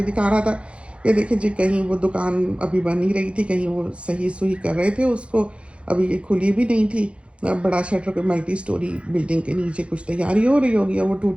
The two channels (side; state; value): left; late; 0.060 ms